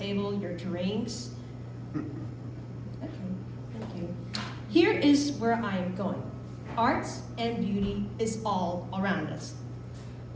your drinks? Okay, thank you. Here is where I am going. Art and beauty is all around us.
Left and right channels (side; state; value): both; identical; correlation 1.00